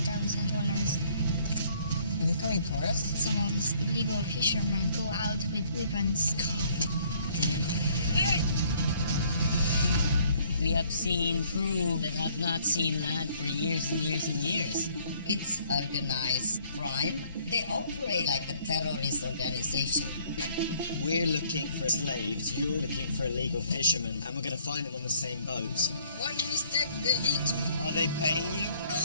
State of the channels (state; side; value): inverted; both; correlation -0.62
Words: Incoming tourists? Some of these illegal fishermen go out with weapons. We have seen crew that have not seen land for years and years and years. It's organized crime. They operate like a terrorist organization. We're looking for slaves, you're looking for illegal fishermen, and we're going to find them on the same boat. One mistake, they hit me. Are they paying you? No